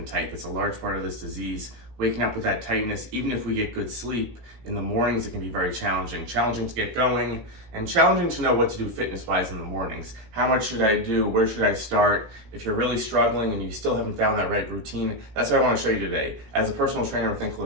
tight. That's a large part of this disease. Waking up with that tightness, even if we get good sleep, in the mornings it can be very challenging. Challenging to get going, and challenging to know what to do fitness-wise in the mornings. How much should I do? Where should I start? If you're really struggling and you still haven't found that right routine, that's what I want to show you today. As a personal trainer with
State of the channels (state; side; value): late; left; 17 ms